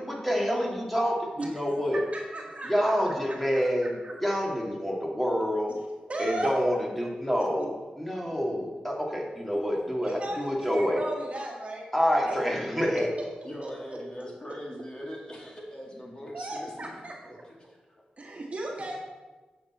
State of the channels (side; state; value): both; normal; correlation 0.94